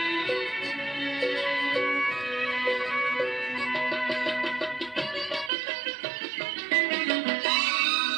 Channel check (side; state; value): left; drops out; at 5.5 s